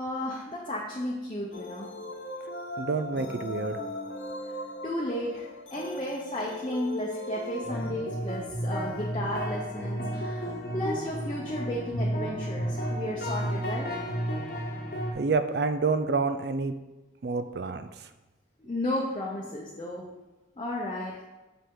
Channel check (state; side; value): normal; both; correlation 0.36